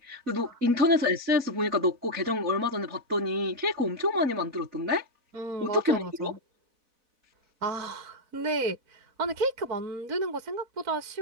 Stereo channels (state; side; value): late; left; 4.0 ms